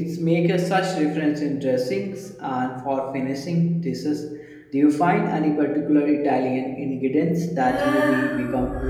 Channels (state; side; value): identical; both; correlation 1.00